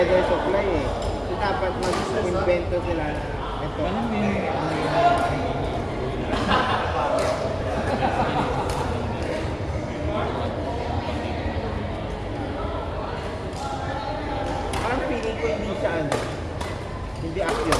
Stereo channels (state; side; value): identical; both; correlation 1.00